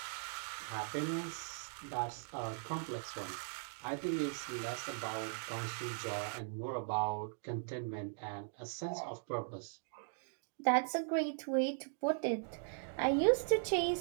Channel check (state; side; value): silent; left; digital silence